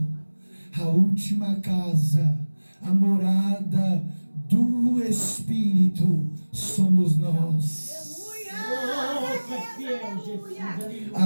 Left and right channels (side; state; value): both; inverted; correlation -1.00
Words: a última casa, a morada do Espírito somos nós.